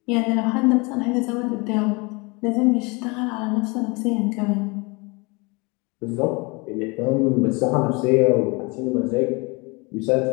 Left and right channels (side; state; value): right; quieter; 27.8 dB